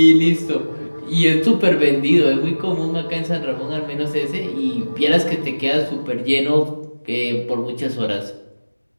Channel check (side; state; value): both; inverted; correlation -1.00